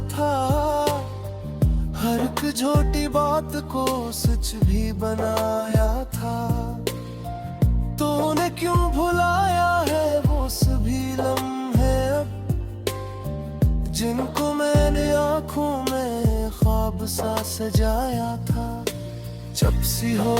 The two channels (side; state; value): both; identical; correlation 1.00